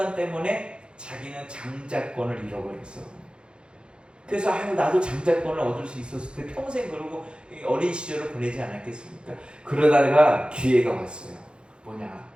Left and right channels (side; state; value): left; late; 0.053 ms